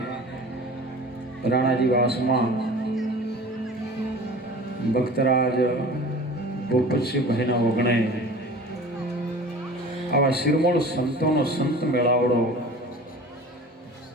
રાણાજી વાસમાં ભક્તરાજ ભૂપતસિંહભાઈના વગણે આવા શિરમોળ સંતોનો સંત મેળાવડો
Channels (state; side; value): normal; both; correlation 0.40